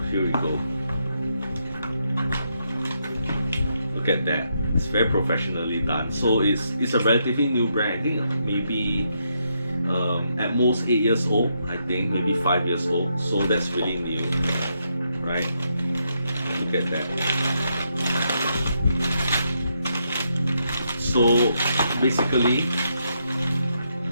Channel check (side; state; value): both; inverted; correlation -0.79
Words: here we go. Look at that. It's very professionally done. So it's a relatively new brand. I think maybe at most 8 years old. I think maybe 5 years old. So that's really new, right? Look at that. So basically,